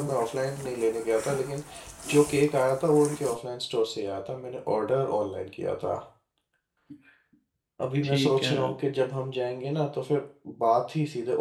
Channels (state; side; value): identical; both; correlation 1.00